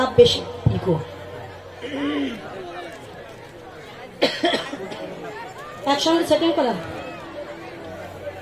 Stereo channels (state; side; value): identical; both; correlation 1.00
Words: বেশি। ইকো। একসঙ্গে সেটিং করা,